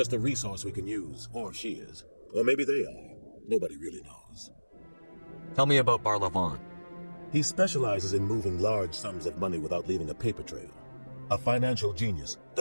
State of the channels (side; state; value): both; inverted; correlation -1.00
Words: a resource we can use, or she is. Or maybe they are. Nobody really knows. Tell me about Barla Vaughn. He specializes in moving large sums of money without leaving a paper trail. A financial genius.